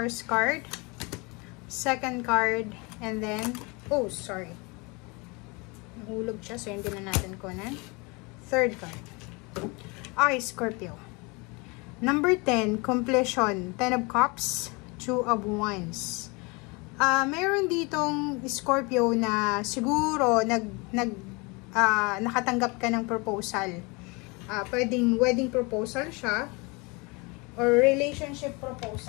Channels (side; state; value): right; quieter; 27.9 dB